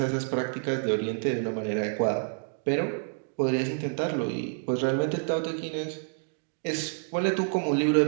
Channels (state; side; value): silent; left; 59 dB below the other